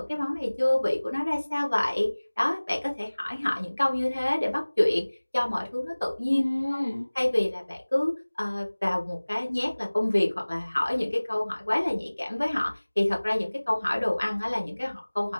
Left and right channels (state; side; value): inverted; both; correlation -1.00